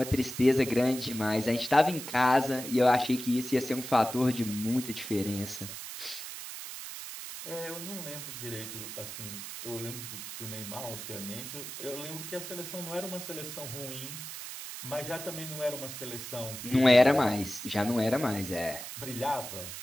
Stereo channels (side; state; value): right; noise; hiss, 9 dB below the sound